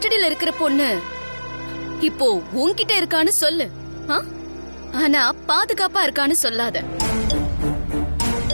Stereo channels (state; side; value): inverted; both; correlation -1.00